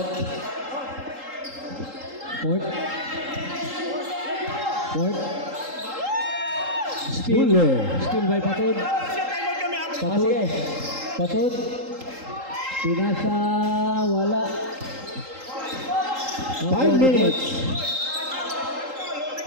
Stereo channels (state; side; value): late; left; 3.8 ms